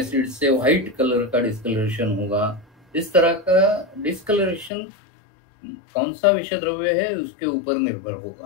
से व्हाइट कलर का डिस्कलरेशन होगा। इस तरह का डिस्कलरेशन कौन सा विषद्रव्य है उसके ऊपर निर्भर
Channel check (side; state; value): right; drops out; at 4.7 s